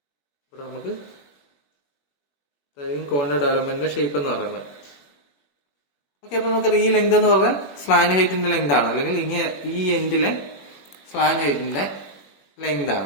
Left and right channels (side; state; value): right; late; 21 ms